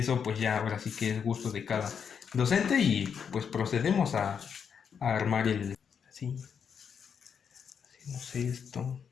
pues ya ahora sí que es gusto de cada docente y pues procedemos a armar así. Hacemos esto.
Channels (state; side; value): quieter; right; 7.1 dB